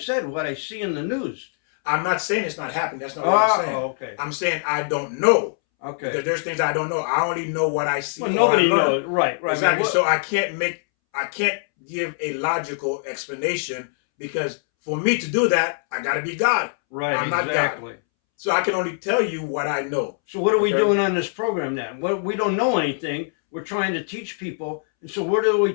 what I see in the news. I'm not saying it's not happening. That's not what I'm saying. Okay. I'm saying I don't know. Okay. Because there's things I don't know. I only know what I see. Well, nobody knows. Right. Exactly. So I can't give a logical explanation, because for me to do that, I got to be God. Right. I'm not God. So I can only tell you what I know. So what are we doing on this program then? Well, we don't know anything. We're trying to teach people. And so where do we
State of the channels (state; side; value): silent; right; 63 dB below the other